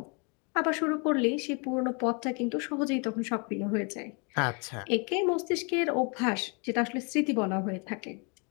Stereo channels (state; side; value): quieter; right; 33.9 dB